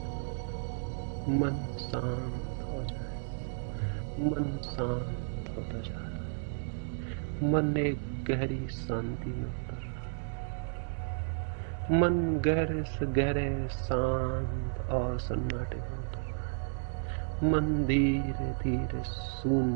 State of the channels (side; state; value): left; silent; digital silence